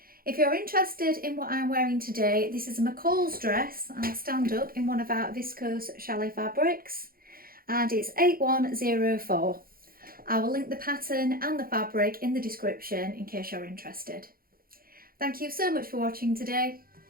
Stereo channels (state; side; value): late; left; 0.42 ms